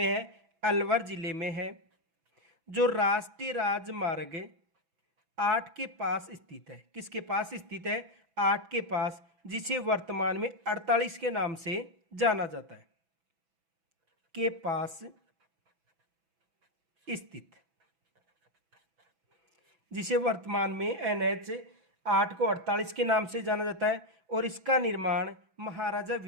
है? अलवर जिले में है, जो राष्ट्रीय राजमार्ग 8 के पास स्थित है। किसके पास स्थित है? 8 के पास, जिसे वर्तमान में 48 के नाम से जाना जाता है। के पास स्थित, जिसे वर्तमान में NH 8 को 48 के नाम से जाना जाता है। और इसका निर्माण महाराजा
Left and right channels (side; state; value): left; late; 6.0 ms